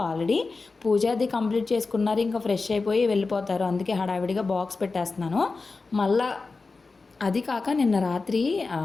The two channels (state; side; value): quieter; right; 4.0 dB